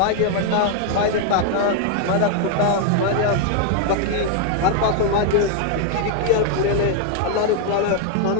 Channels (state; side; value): different; both; correlation 0.00